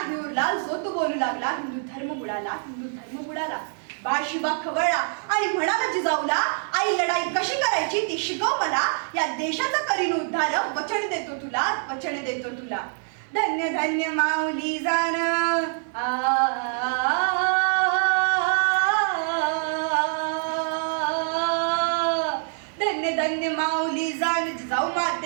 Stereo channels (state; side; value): silent; left; 62 dB below the other